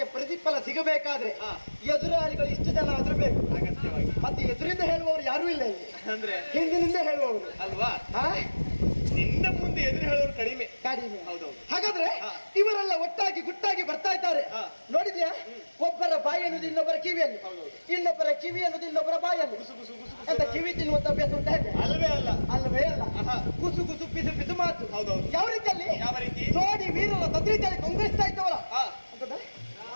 ಪ್ರತಿಫಲ ಸಿಗಬೇಕಾದ್ರೆ ಎದುರಾಳಿಗಳು ಇಷ್ಟು ಜನ ಆದ್ರೂ ಬೇಕು ಅಗತ್ಯವಾಗಿ. ಮತ್ತೆ ಎದುರಿಂದ ಹೇಳುವವರು ಯಾರು ಇಲ್ಲ ಇಲ್ಲಿ, ಅಂದ್ರೆ ಹಿಂದಿನಿಂದ ಹೇಳುವವರು ಅಲ್ವಾ? ನಿನ್ನ ಮುಂದೆ ಎದುರು ಹೇಳೋರು ಕಡಿಮೆ. ಹೌದೌದು. ಹಾಗಾದ್ರೆ ಇವರೆಲ್ಲ ಒಟ್ಟಾಗಿ ಗುಟ್ಟಾಗಿ ಬರ್ತಾ ಇದ್ದಾರೆ. ನೋಡಿದ್ಯಾ? ಒಬ್ಬರ ಬಾಯಿ ಅನ್ನೋದು ಇನ್ನೊಬ್ಬರ ಕಿವಿಯಲ್ಲಿ, ಇನ್ನೊಬ್ಬರ ಕಿವಿ ಅನ್ನೋದು ಇನ್ನೊಬ್ಬರ ಬಾಯಲ್ಲಿ. ಅಂತ ಕಿವಿ ತಿನ್ನುವಂತ ಅಭ್ಯಾಸ ಉಂಟ? ಅಲ್ವೇ ಅಲ್ಲ. ಅಲ್ವೇ ಅಲ್ಲ. ಕುಸು ಕುಸು ಪಿಸು ಪಿಸು ಮಾತು. ಹೌದೌದು. ಯಾವ ರೀತಿಯಲ್ಲಿ? ಯಾವ ರೀತಿ? ನೋಡಿ ವೀರರ ತದ್ರೀತಿಯಲ್ಲಿ ಕೊಂಗ್ರೆಸ್ತಾ ಇದ್ದವರ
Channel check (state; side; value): inverted; both; correlation -1.00